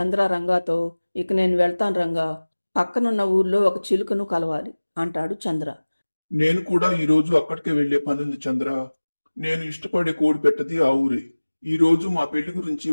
రంగాతో, ఇక నేను వెళ్తాను రంగా, పక్కనున్న ఊర్లో ఒక చిలుకను కలవాలి అంటాడు చంద్ర. నేను కూడా ఈ రోజు అక్కడికే వెళ్లే పనుంది చంద్ర. నేను ఇష్టపడే కోడి పెట్టది ఆ ఊరే. ఈ రోజు మా పెళ్లి గురించి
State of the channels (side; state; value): both; inverted; correlation -1.00